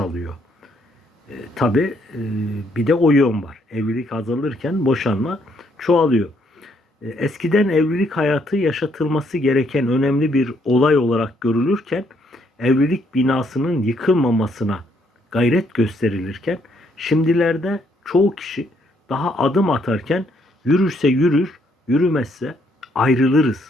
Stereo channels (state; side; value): normal; both; correlation 0.71